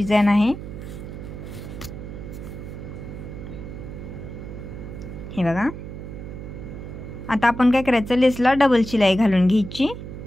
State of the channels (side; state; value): right; noise; hum, 10 dB below the sound